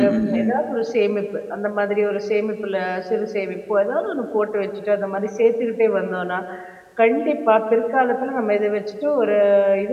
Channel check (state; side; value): identical; both; correlation 1.00